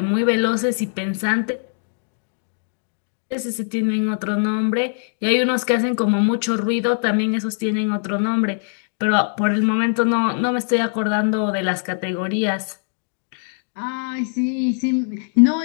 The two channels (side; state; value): right; silent; digital silence